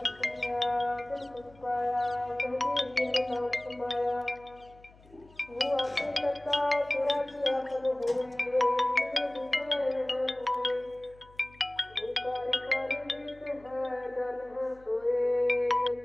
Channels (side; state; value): left; noise; hum, 26 dB below the sound